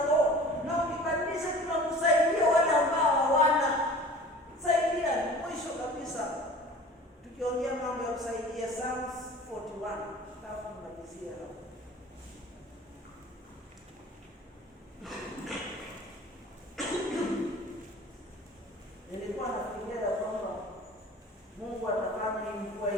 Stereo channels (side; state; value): both; normal; correlation 0.43